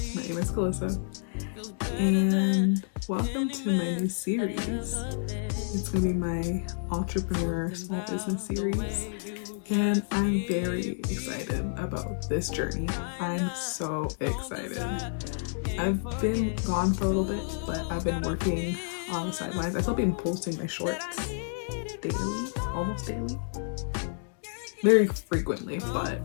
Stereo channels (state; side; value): silent; right; digital silence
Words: My name is Calissa, and welcome to my new series. It's gonna be my entrepreneur small business series, and I'm very excited about this journey. I'm so excited. I've been gone for a little bit, but I've been working on the sidelines. I've still been posting my shorts daily, almost daily, very frequently, but